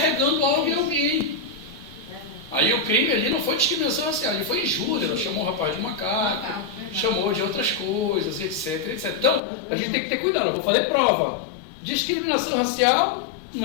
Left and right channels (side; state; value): right; drops out; at 9.4 s